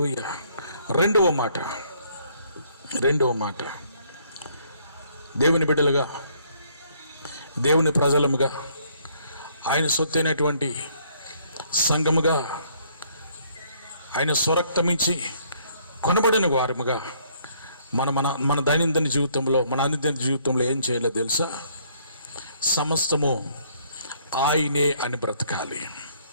రెండవ మాట, దేవుని బిడ్డలుగా, దేవుని ప్రజలముగా, ఆయన సొత్తైనటువంటి సంఘముగా, ఆయన స్వరక్తమించి కొనబడిన వారముగా మన దైనందిన జీవితంలో, మన అనుదిన జీవితంలో ఏం చేయాలో తెలుసా? సమస్తము ఆయనే అని బ్రతకాలి.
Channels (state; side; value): inverted; both; correlation -0.65